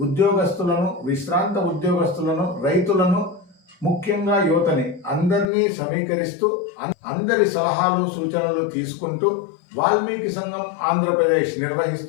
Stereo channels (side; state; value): right; drops out; at 5.5 s